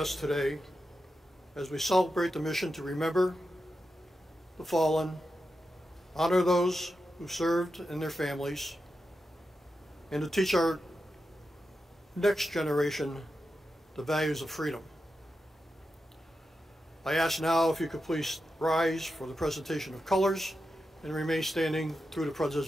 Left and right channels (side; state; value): both; normal; correlation 0.89